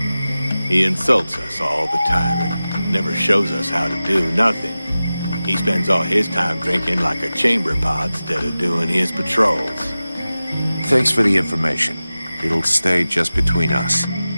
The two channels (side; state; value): both; inverted; correlation -0.96